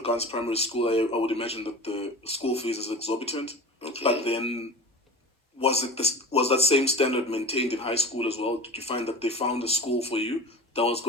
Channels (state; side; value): normal; both; correlation 0.35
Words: primary school, I would imagine that the school fees is exorbitant. Okay. But then, was that same standard maintained in high school as well? Did you find that they found a school for you that was